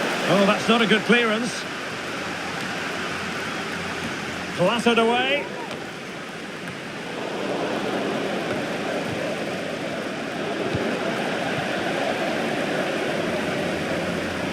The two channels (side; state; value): both; identical; correlation 1.00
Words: Oh, that's not a good clearance. Clattered away.